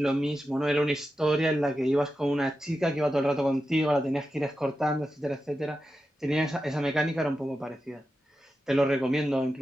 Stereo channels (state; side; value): normal; both; correlation 0.90